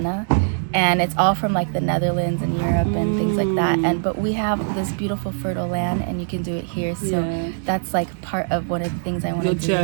And it's all from like the Netherlands and Europe and things like that. But we have this beautiful fertile land, and you can do it here. So that's like part of one of the things I want to do. Your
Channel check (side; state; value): left; silent; digital silence